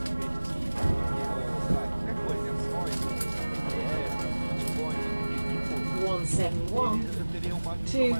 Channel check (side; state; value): both; inverted; correlation -1.00